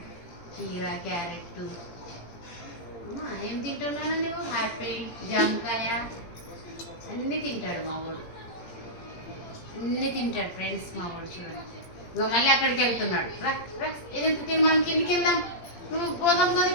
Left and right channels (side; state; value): right; late; 17 ms